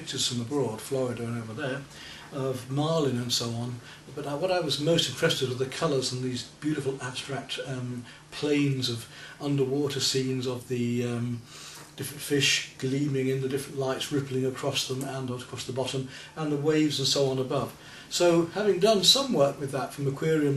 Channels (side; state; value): both; identical; correlation 1.00